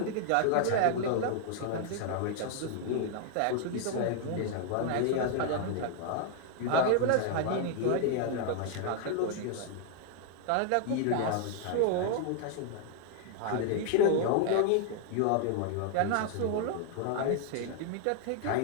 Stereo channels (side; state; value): both; different; correlation 0.00